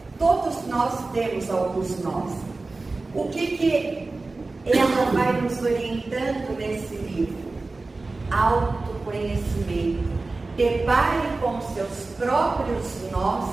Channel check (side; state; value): left; quieter; 3.5 dB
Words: Todos nós temos alguns nós. O que ela vai nos orientando nesse livro? Autoconhecimento. Depare com seus próprios nós